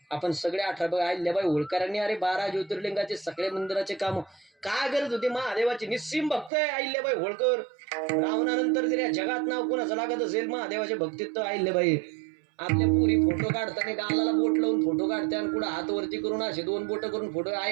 आपण सगळे 18 अहिल्याबाई होळकरांनी अरे 12 ज्योतिर्लिंगाचे सगळे मंदिराचे काम काय गरज होती. महादेवाचे निस्सीम भक्त आहे अहिल्याबाई होळकर. रावणानंतर जर या जगात नाव कोणाचं लागत असेल महादेवाचे भक्तीत तर अहिल्याबाई. आपल्या पुरी फोटो काढताना गालाला बोट लावून फोटो काढते आणि कुठं हात वरती करून असे 2 बोट करून फोटो.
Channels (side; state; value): left; drops out; at 6.5 s